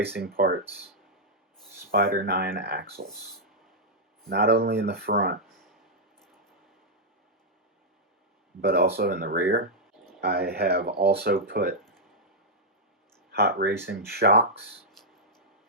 Parts Spider 9 axles, not only in the front but also in the rear. I have also put Hot Racing shocks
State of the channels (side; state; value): both; normal; correlation -0.05